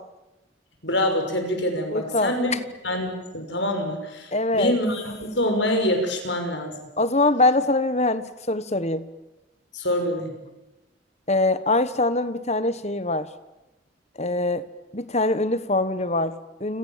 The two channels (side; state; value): both; normal; correlation 0.06